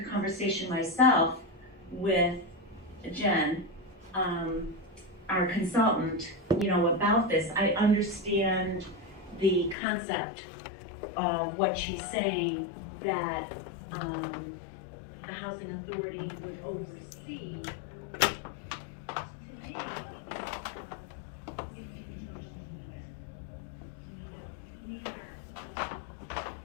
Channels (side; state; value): right; drops out; at 9.8 s